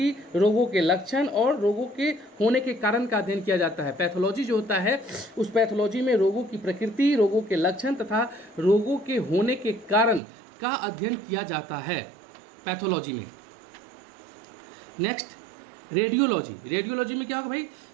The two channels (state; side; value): drops out; left; at 10.2 s